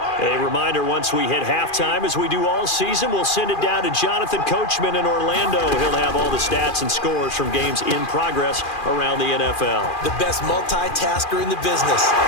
A reminder, once we hit halftime, as we do all season, we'll send it down to Jonathan Coachman in Orlando. He'll have all the stats and scores from games in progress around the NFL. The best multitasker in the business,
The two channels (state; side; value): late; right; 2.4 ms